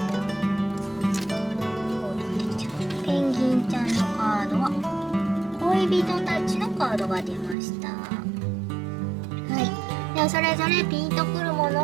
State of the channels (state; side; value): drops out; left; at 7.6 s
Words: ペンギンちゃんのカードは恋人たちのカードが出ました。はい。ではそれぞれピンとくるも